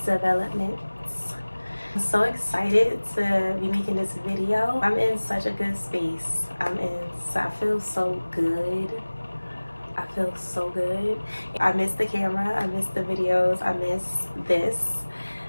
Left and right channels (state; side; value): inverted; both; correlation -1.00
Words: developments. I'm so excited to be making this video. I'm in such a good space. I feel so good. I feel so good. I miss the camera, I miss the videos, I miss this.